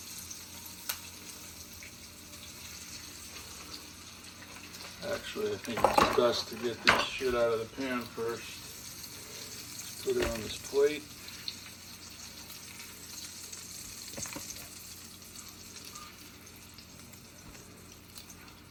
Actually, I think it's best to get this shit out of the pan first. Put it on this plate.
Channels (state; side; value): identical; both; correlation 1.00